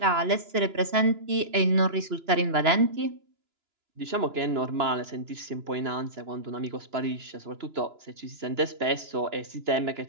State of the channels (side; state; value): left; late; 2.9 ms